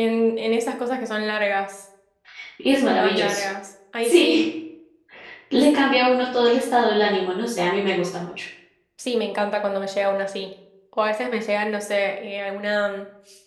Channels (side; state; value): both; identical; correlation 1.00